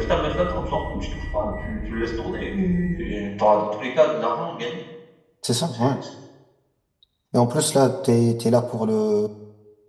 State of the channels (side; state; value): both; identical; correlation 1.00